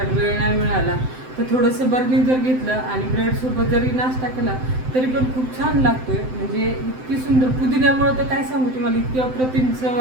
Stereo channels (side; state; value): left; late; 7.8 ms